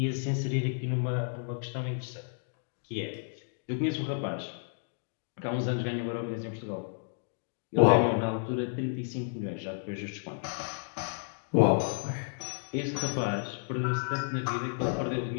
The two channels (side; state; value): right; silent; digital silence